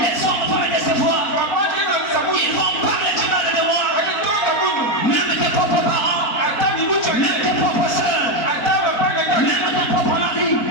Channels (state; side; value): late; right; 4.1 ms